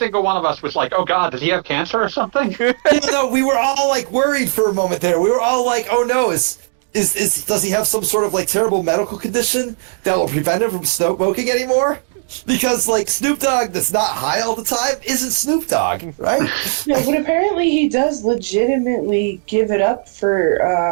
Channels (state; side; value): silent; left; digital silence